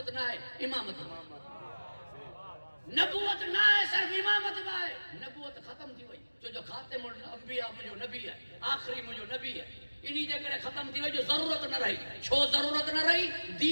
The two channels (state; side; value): inverted; both; correlation -1.00